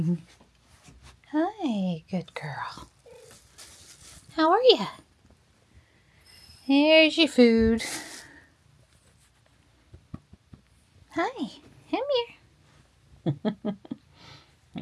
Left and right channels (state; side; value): identical; both; correlation 1.00